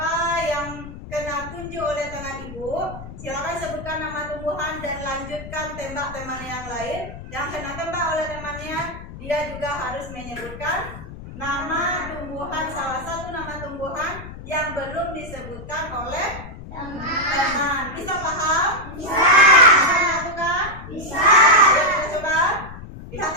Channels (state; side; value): noise; left; rumble, 13 dB below the sound